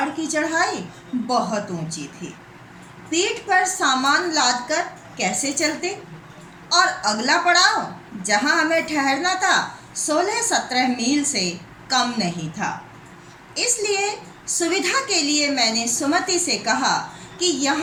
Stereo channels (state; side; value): identical; both; correlation 1.00